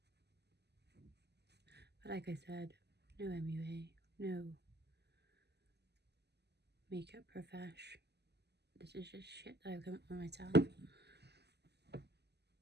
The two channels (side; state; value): left; late; 0.49 ms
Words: But like I said, no MUA, no makeup profesh. This is just shit that I've come up with myself.